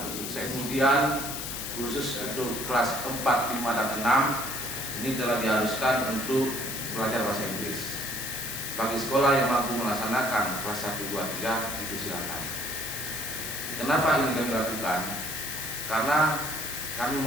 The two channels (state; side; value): noise; left; hiss, 5 dB below the sound